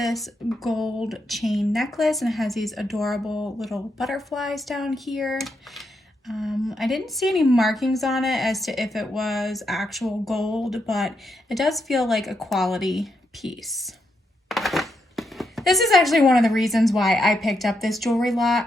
gold chain necklace and it has these adorable little butterflies down here. I didn't see any markings on it as to if it was actual gold, but it does feel like a quality piece. This is actually one of the reasons why I picked up this jewelry lot.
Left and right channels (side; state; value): both; normal; correlation 0.81